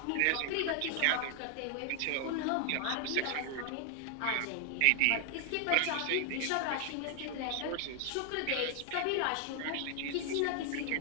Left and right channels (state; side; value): different; both; correlation 0.00